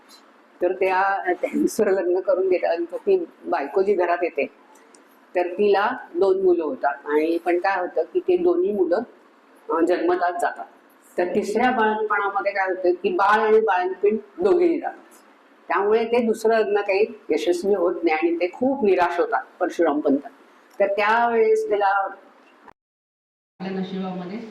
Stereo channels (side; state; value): both; identical; correlation 1.00